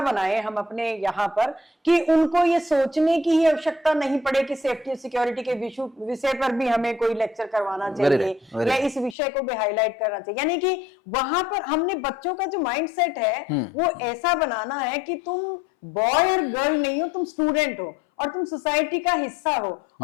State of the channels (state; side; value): drops out; right; at 9.2 s